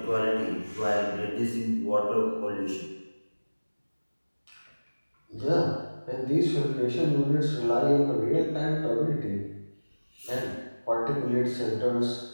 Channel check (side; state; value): both; inverted; correlation -1.00